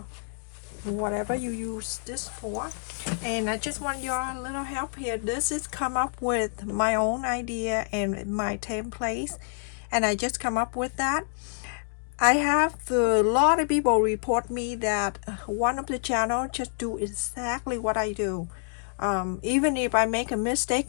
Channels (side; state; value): right; silent; digital silence